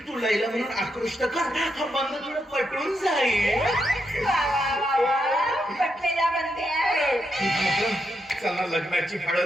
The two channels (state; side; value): normal; both; correlation 0.82